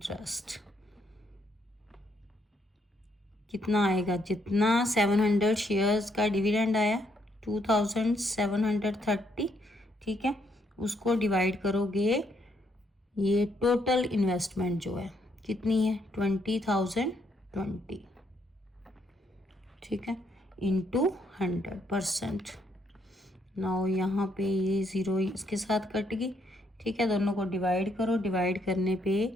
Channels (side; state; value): both; normal; correlation 0.73